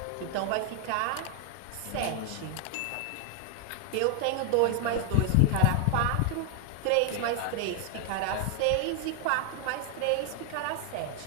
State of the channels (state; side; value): different; both; correlation 0.00